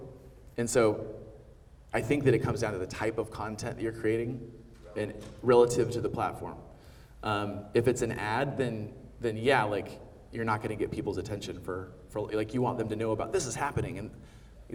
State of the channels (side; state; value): both; identical; correlation 1.00